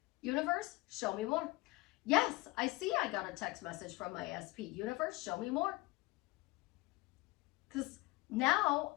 Universe, show me more. Yes, I see I got a text message from my SP. Universe, show me more. Because now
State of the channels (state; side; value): quieter; right; 22.1 dB